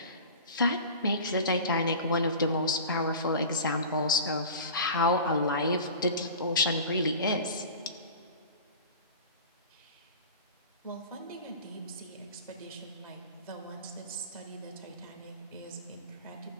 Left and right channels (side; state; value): both; inverted; correlation -0.37